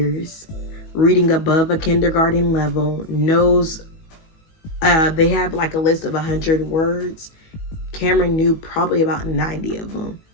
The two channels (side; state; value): right; late; 19 ms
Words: reading above a kindergarten level, knows, they have like a list of 100 words. Cameron knew probably about 90 of them